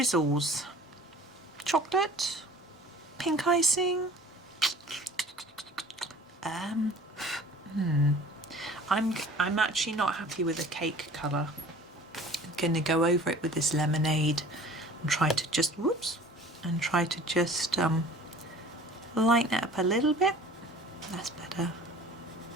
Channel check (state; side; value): normal; both; correlation 0.46